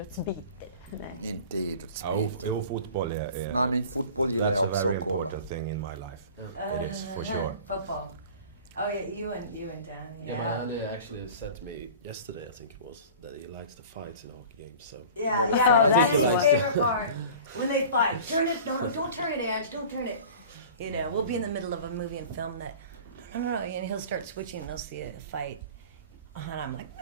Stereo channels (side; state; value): both; inverted; correlation -0.41